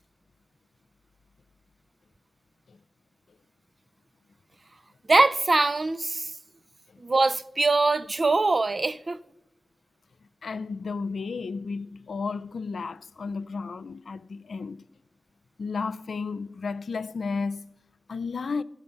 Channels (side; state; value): both; normal; correlation 0.95